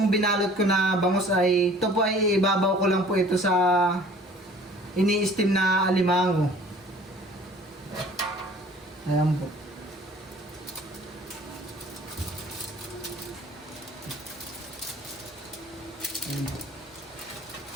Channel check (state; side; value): normal; both; correlation 0.50